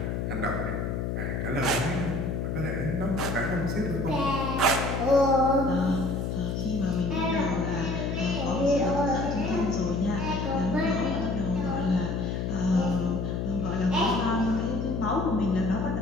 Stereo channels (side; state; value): left; noise; hum, 1 dB below the sound